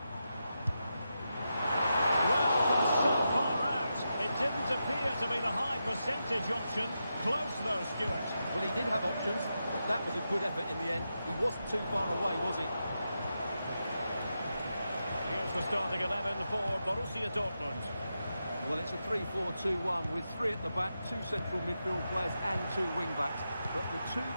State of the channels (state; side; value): inverted; both; correlation -0.87